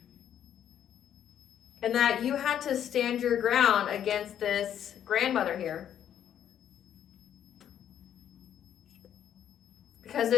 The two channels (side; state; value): right; quieter; 9.8 dB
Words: and that you had to stand your ground against this grandmother here. Because